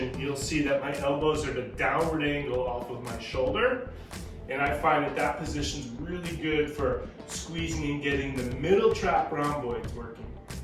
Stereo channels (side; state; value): both; identical; correlation 1.00